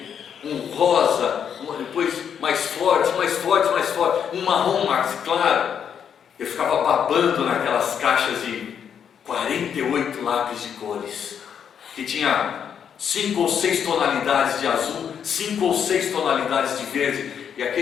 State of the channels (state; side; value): quieter; right; 8.0 dB